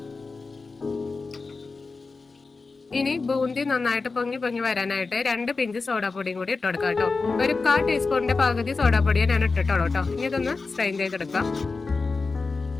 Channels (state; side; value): quieter; right; 4.1 dB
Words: ഇനി ബൂന്തി നന്നായിട്ട് പൊങ്ങി വരാനായിട്ട് 2 പിഞ്ച് സോഡാപ്പൊടിയും കൂടി ഇട്ട് കൊടുക്കാം കേട്ടോ. ഒരു 1/4 ടീസ്പൂണിന്റെ പകുതി സോഡാപ്പൊടിയെ ഞാൻ ഇട്ടിട്ടുള്ളൂ കേട്ടോ. ഇനി ഇതൊന്ന് സ്ട്രെയിൻ ചെയ്തെടുക്കാം.